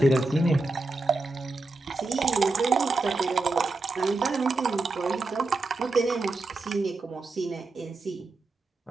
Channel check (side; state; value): left; quieter; 3.3 dB